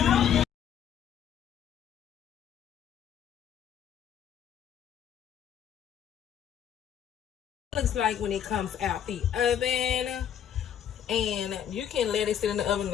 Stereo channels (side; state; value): right; quieter; 9.2 dB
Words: Looks like when it comes out the oven, and you can let it sit in the oven